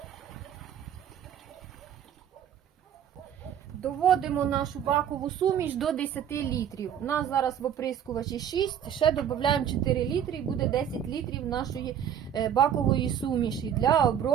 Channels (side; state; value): left; quieter; 9.2 dB